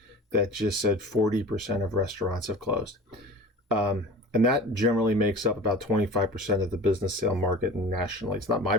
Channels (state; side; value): normal; both; correlation 0.38